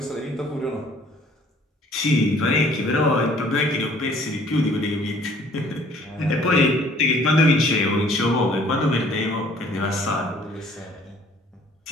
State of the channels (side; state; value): both; normal; correlation 0.56